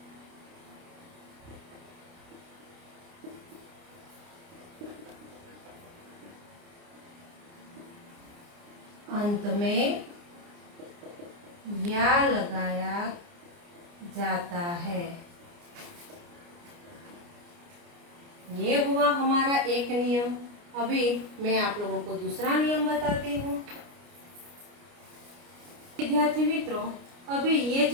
अंत में या लगाया जाता है। ये हुआ हमारा एक नियम। अभी मैं आप लोगों को दूसरा नियम बताती हूँ। विद्यार्थी मित्रों, अभी ये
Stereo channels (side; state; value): left; late; 29 ms